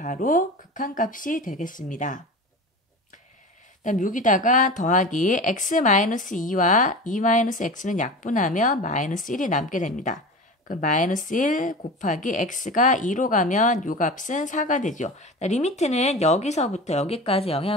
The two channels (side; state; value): both; normal; correlation 0.32